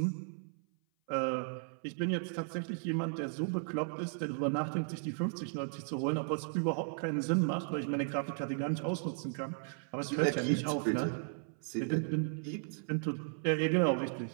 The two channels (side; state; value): left; silent; 54 dB below the other